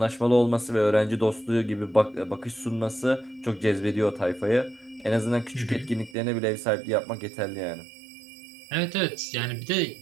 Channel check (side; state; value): left; drops out; at 6.2 s